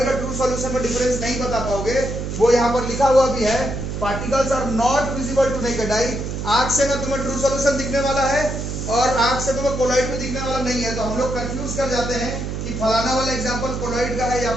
और ट्रू सॉल्यूशन में डिफरेंस नहीं बता पाओगे। वो यहाँ पर लिखा हुआ भी है, particles are not visible to naked eye. आंख से ना तुम्हें ट्रू सॉल्यूशन दिखने वाला है और आंख से तुम्हें कोलॉइड भी दिखने वाला नहीं है, तो हम लोग कंफ्यूज कर जाते हैं कि फलाना वाला एग्जांपल कोलॉइड का है या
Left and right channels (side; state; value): right; noise; hum, 4 dB below the sound